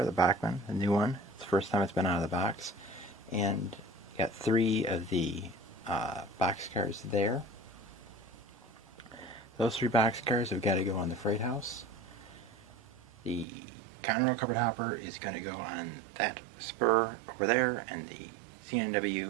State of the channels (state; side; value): drops out; left; at 13.5 s